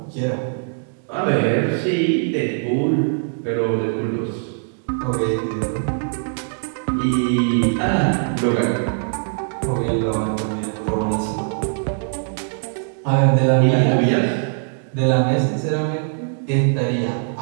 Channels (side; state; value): left; silent; 65 dB below the other